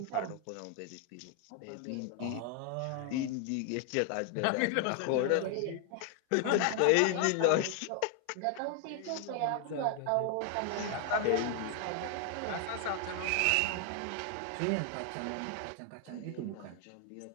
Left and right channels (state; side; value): different; both; correlation 0.00